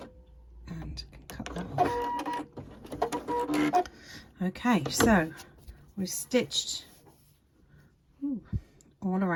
and cut that off. Okay, so we've stitched all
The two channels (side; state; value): both; identical; correlation 1.00